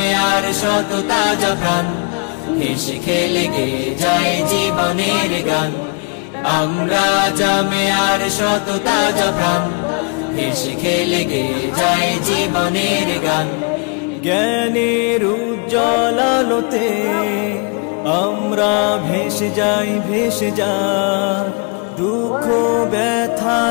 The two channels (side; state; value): right; quieter; 35.5 dB